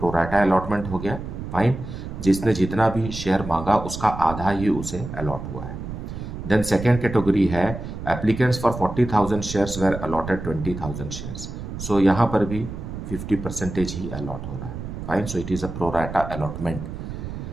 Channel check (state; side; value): noise; right; rumble, 8 dB below the sound